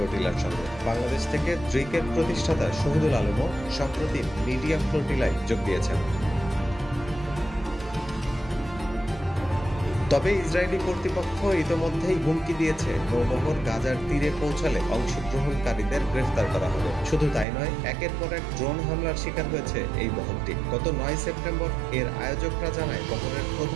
সঙ্গে। বাংলাদেশ থেকে ড্রিকের প্রতিষ্ঠাতা শহীদুল আলমও সম্প্রতি মিডিয়া ফ্লোটিলায় যোগ দিয়েছেন। তবে ইসরায়েলি কর্তৃপক্ষ ইতোমধ্যেই হুমকি দিয়েছে নৌবহর গাজার তীরে পৌঁছালে অংশগ্রহণকারীদের গ্রেফতার করা হবে। শুধু তাই নয়, একের পর এক ড্রোন হামলার শিকার হয়েছে এই বহরটি। গত ৯ সেপ্টেম্বর এর আয়োজকরা জানায় বহরের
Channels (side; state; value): left; drops out; at 17.4 s